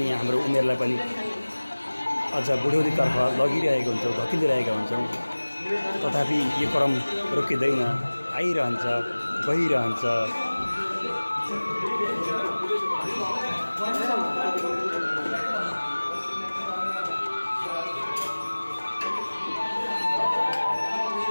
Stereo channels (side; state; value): both; inverted; correlation -1.00